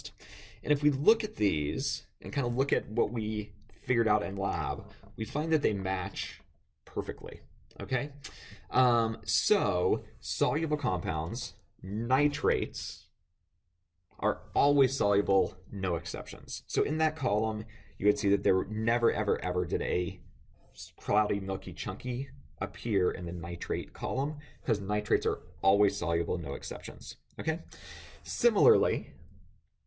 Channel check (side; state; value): both; identical; correlation 1.00